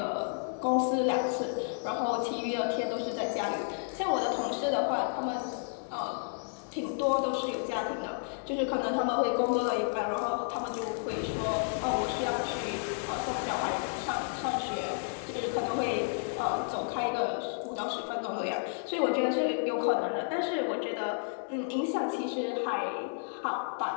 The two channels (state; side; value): silent; right; digital silence